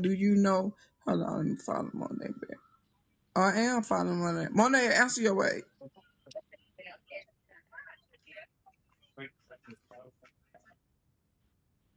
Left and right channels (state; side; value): identical; both; correlation 1.00